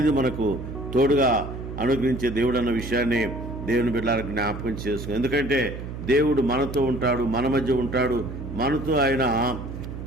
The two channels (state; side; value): noise; right; hum, 9 dB below the sound